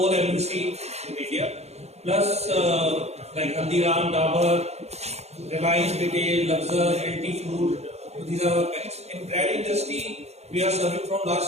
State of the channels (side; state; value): left; late; 0.31 ms